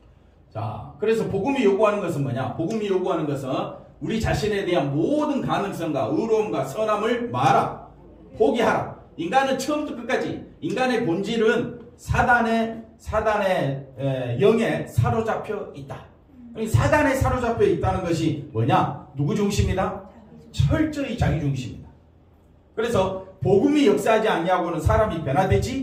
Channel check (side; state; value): both; identical; correlation 1.00